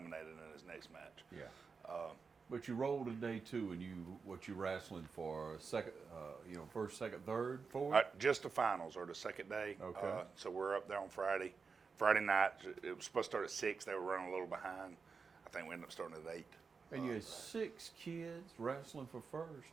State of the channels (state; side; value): quieter; left; 5.1 dB